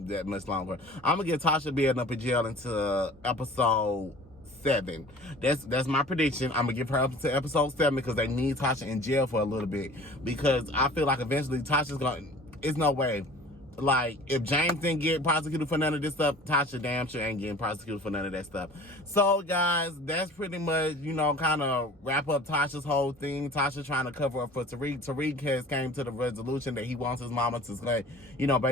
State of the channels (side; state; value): both; normal; correlation 0.44